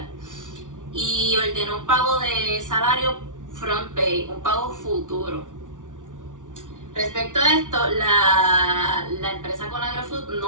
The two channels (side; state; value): left; late; 0.87 ms